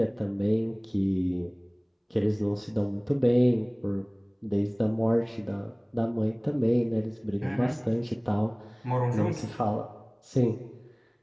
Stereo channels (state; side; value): identical; both; correlation 1.00